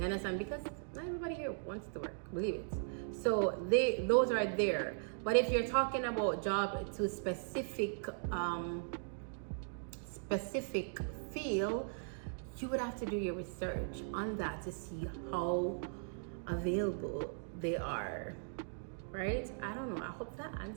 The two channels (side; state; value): left; silent; digital silence